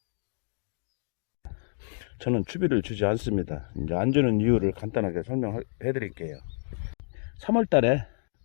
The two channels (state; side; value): silent; right; digital silence